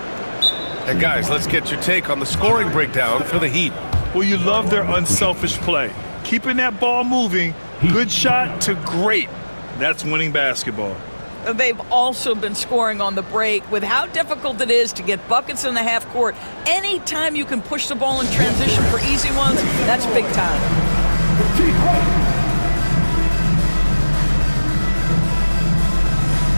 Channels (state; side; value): inverted; both; correlation -1.00